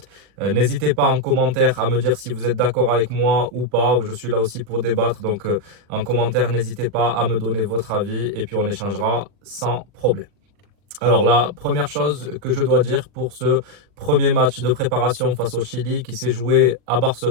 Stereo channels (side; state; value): left; late; 40 ms